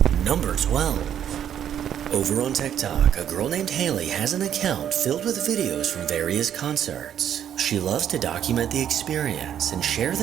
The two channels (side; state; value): left; quieter; 9.8 dB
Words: Number 12. Over on TikTok, a girl named Haley has an account filled with videos from various concerts. She loves to document the experience and share